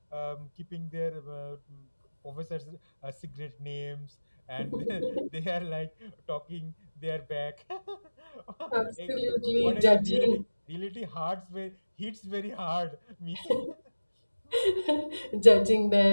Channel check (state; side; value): inverted; both; correlation -1.00